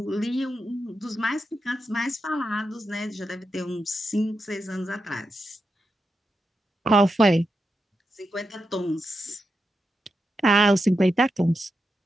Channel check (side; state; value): both; normal; correlation 0.87